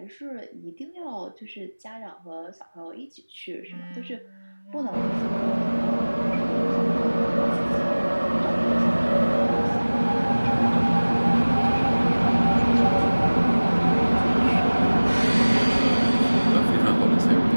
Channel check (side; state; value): both; inverted; correlation -1.00